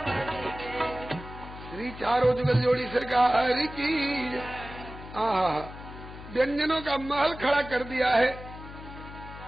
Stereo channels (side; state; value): left; noise; hum, 14 dB below the sound